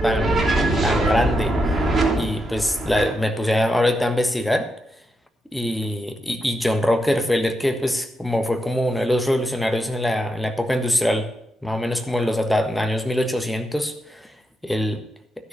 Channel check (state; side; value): normal; both; correlation 0.84